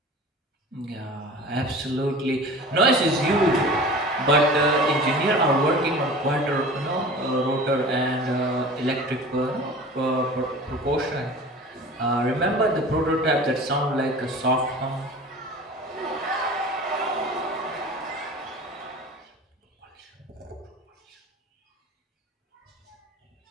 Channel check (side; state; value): both; normal; correlation 0.39